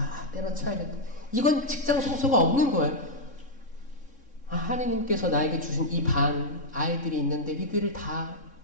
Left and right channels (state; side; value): late; right; 3.7 ms